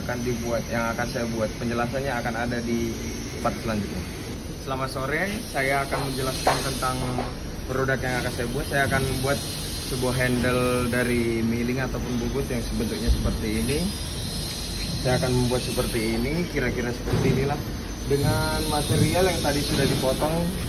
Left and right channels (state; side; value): identical; both; correlation 1.00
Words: akan saya buat. Penjelasannya akan ada di part selanjutnya. Selamat sore, saya akan menjelaskan tentang produk yang akan saya buat. Saya akan membuat sebuah handle dari milling ataupun bubut yang bentuknya seperti ini. Saya akan membuat seperti ini, kira-kira seperti inilah, dengan material yang tadi sudah dipotong